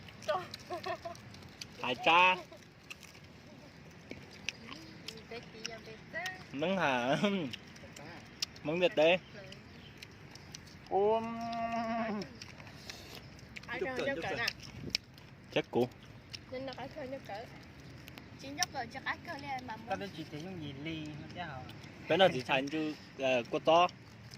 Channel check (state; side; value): identical; both; correlation 1.00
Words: Hải cha. Mứng hả? Mứng vịt đi. Chắc cũ. Nên nó phải khơi nước cỡ. Chỉ nhóc rồi cho cá cơ lên mà. Tao chỉ thấy những gì ly nó chứ hả? Cái nào chỉ thành chứ cô to.